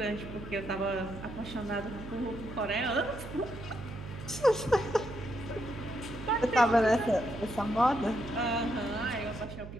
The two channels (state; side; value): noise; right; hum, 12 dB below the sound